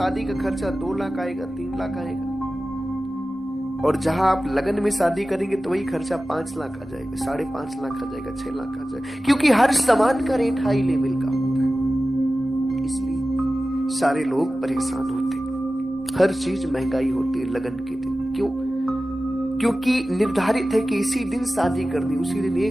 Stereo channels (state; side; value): normal; both; correlation 0.95